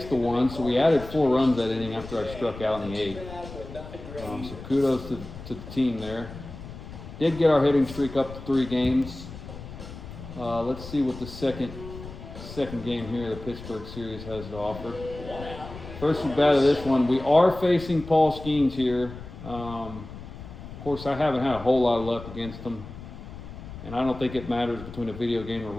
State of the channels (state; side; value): noise; left; rumble, 13 dB below the sound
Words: So we added 4 runs that inning after I struck out in the 8th. So kudos to the team there. Did get our hitting streak up to 3 games. Let's see what the second game here the Pittsburgh series has to offer. First at bat of this one, we are facing Paul Skeens here. Of course, I haven't had a whole lot of luck against him, and I don't think it matters between a video game or